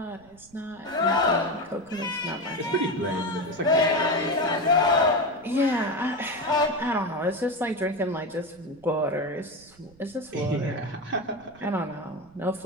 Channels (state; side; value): noise; right; rumble, 26 dB below the sound